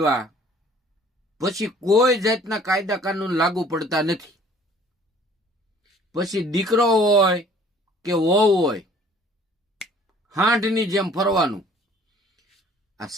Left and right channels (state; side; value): normal; both; correlation 0.54